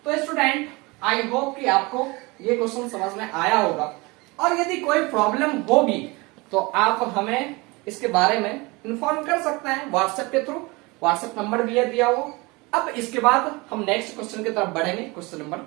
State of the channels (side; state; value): left; quieter; 24.9 dB